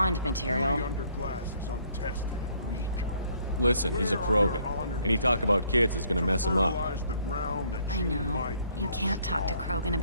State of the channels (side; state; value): both; inverted; correlation -0.64